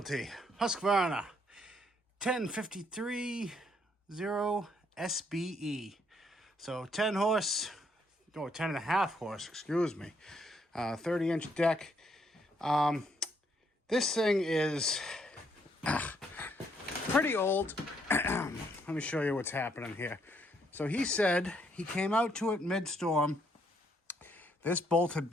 Husqvarna, 1053-0 SBE. So 10 horse, no, 10 and a half horse, excuse me. 30-inch deck. This thing is pretty old. Let me show you what's happening here. So he said he came out to it mid-storm. This bolt had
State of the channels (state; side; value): normal; both; correlation 0.71